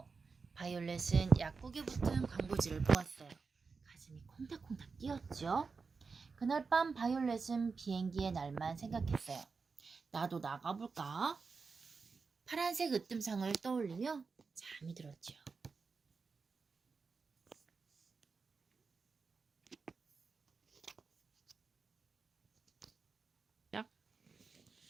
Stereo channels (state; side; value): quieter; left; 4.8 dB